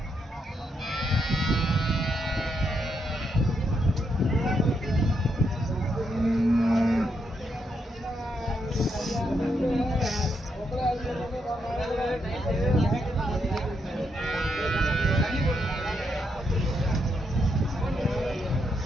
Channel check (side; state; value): both; normal; correlation 0.79